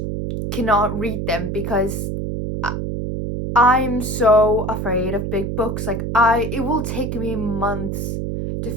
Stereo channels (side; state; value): right; noise; hum, 3 dB below the sound